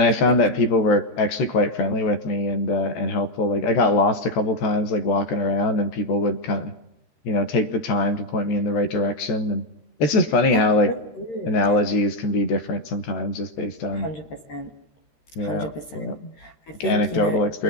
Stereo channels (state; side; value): late; right; 13 ms